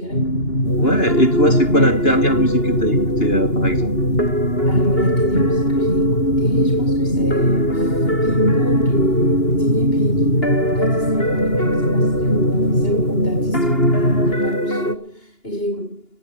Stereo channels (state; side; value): late; right; 2.9 ms